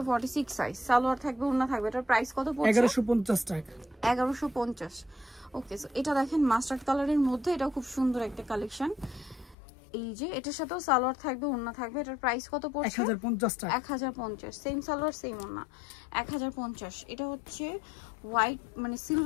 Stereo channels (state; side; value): drops out; right; at 9.6 s